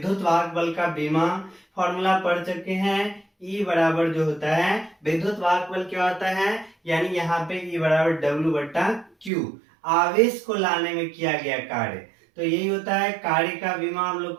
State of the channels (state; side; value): drops out; left; at 9.3 s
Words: वाहक बल का विमा फॉर्मूला पढ़ चुके हैं। E बराबर जो होता है विद्युत वाहक बल क्या होता है, यानी यहाँ पे E बराबर W/Q, आवेश को लाने में किया गया कार्य। तो यही होता है कार्य का विमा, हम लोग